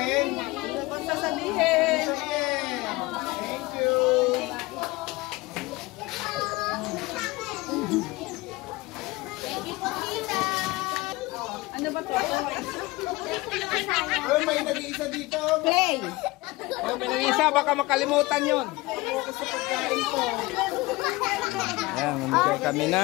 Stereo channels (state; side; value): quieter; right; 21.3 dB